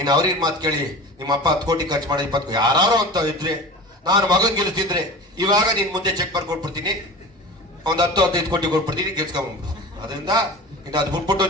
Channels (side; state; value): both; normal; correlation 0.35